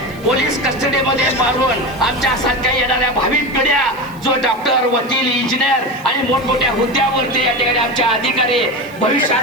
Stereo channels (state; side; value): noise; right; hiss, 25 dB below the sound